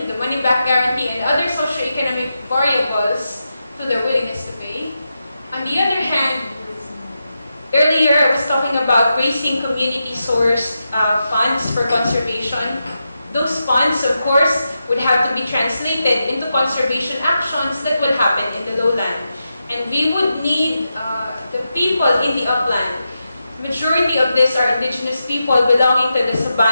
the money-back guarantee, and other socioeconomic variables to their willingness to pay. On the other hand, earlier I was talking about raising community-sourced funds for conservation. Those funds, of course, would have to be translated into conservation actions that will happen in the lowland. And we would need the people in the upland. Majority of these are indigenous people belonging to the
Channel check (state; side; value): inverted; both; correlation -0.88